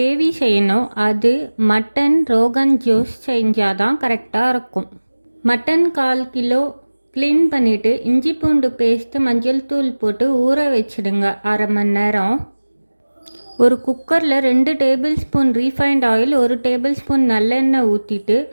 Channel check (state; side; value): inverted; both; correlation -1.00